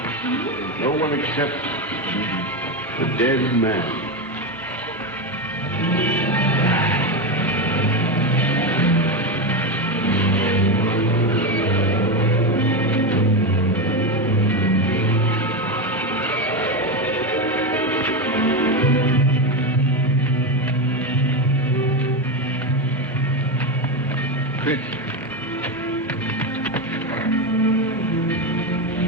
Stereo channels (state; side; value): normal; both; correlation 0.13